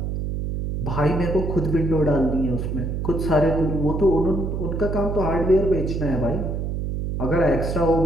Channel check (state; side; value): noise; right; hum, 2 dB below the sound